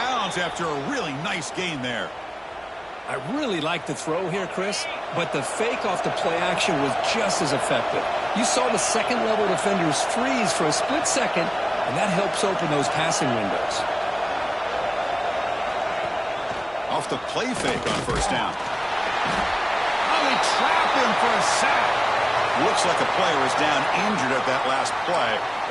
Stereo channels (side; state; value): both; identical; correlation 1.00